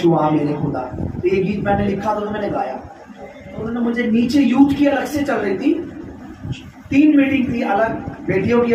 आ मेरे खुदा। तो ये गीत मैंने लिखा तो मैंने गाया। तो उन्होंने मुझे नीचे यूथ की अलग से चल रही थी, 3 मीटिंग थी अलग, बेटियों की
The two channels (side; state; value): both; identical; correlation 1.00